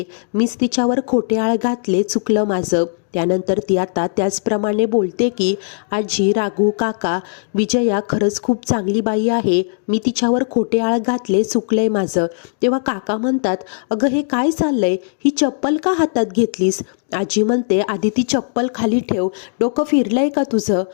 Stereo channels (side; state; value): right; silent; digital silence